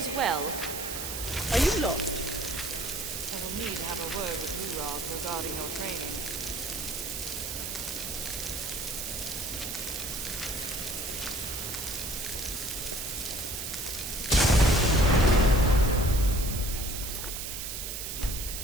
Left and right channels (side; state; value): right; noise; hiss, 5 dB below the sound